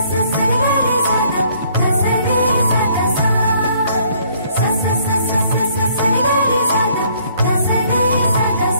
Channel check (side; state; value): both; inverted; correlation -0.63